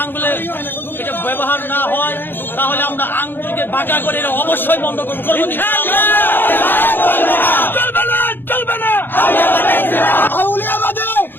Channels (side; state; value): right; late; 0.098 ms